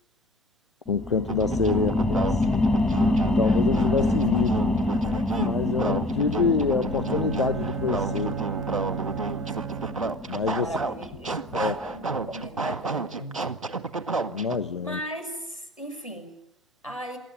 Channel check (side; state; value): both; normal; correlation 0.45